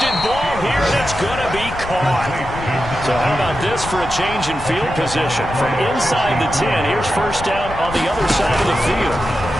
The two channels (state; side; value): noise; left; rumble, 11 dB below the sound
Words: ball here, and it's going to be caught. So how about this for a change in field position? From inside the 10, here's first down on the other side of the field.